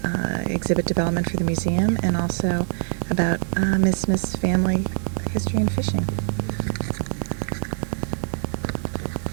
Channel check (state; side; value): silent; left; 56 dB below the other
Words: exhibit development for the museum and also about Ms. Smith's family history and fishing.